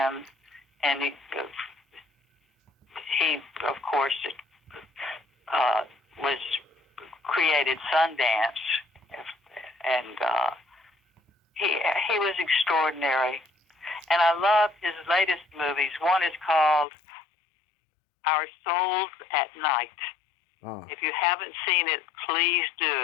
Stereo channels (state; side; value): drops out; right; at 16.9 s